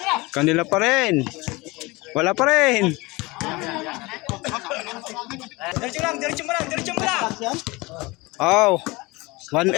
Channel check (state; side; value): quieter; right; 23.4 dB